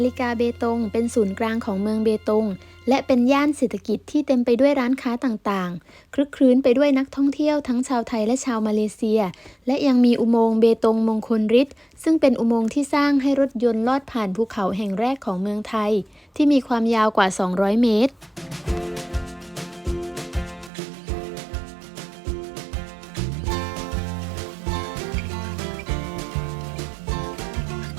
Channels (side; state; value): left; drops out; at 20.7 s